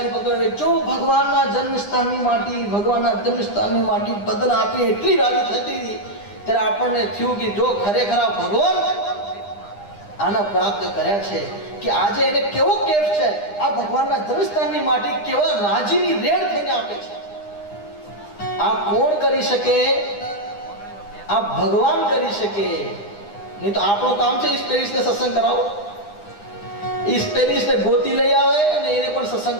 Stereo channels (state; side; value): late; right; 9.9 ms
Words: પકડે, જો ભગવાનના જન્મસ્થાનની માટી, ભગવાનના જન્મસ્થાનની માટી બદલ આપી એટલી રાજી થતી હતી. ત્યારે આપણને થયું કે જો ખરેખર ભગવાન આના પ્રાપ્ત કર્યા છે કે આજે એને કેવો કેફ છે, આ ભગવાનના જન્મસ્થાનની માટી કેવા રાજીની રેડ થઈને આપે છે. આ કોણ કરી શકે? આ ભગવાન કરી શકે. નહીં તો આપણું કામ છે સ્પેરિસને સત્સંગ કરાવો, સ્પેરિસને ગોતી લઈ આવે અને એને પણ સત્સંગ